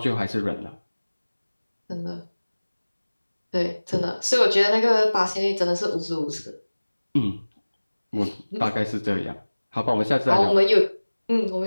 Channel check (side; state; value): both; inverted; correlation -1.00